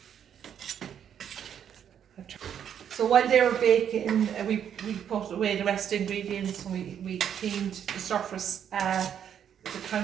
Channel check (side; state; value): left; quieter; 8.9 dB